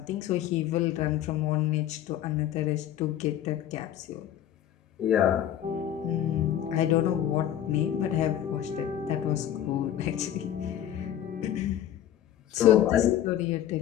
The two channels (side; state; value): right; quieter; 11.1 dB